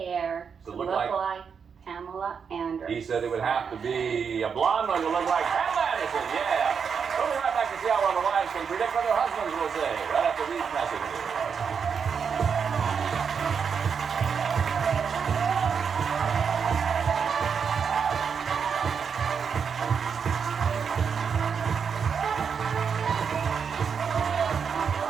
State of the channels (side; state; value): left; quieter; 6.5 dB